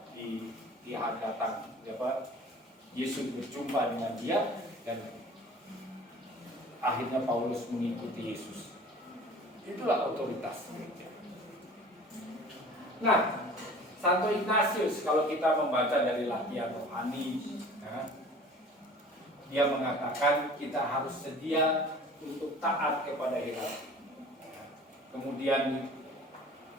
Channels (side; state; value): both; normal; correlation 0.45